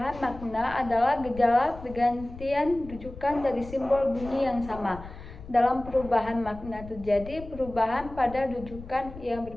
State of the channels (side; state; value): left; noise; rumble, 15 dB below the sound